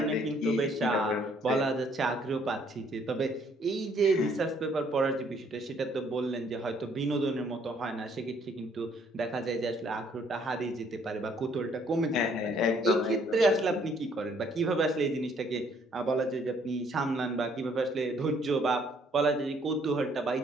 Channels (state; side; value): normal; both; correlation 0.64